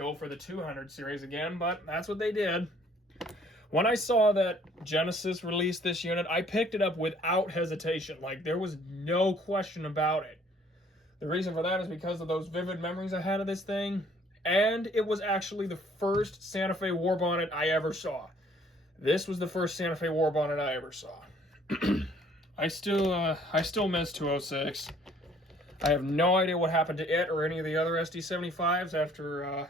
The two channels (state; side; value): normal; both; correlation 0.59